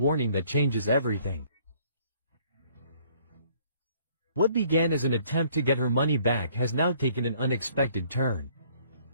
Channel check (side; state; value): both; inverted; correlation -0.60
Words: that changes everything. What began as an attempt to get her money back has now taken an unexpected turn.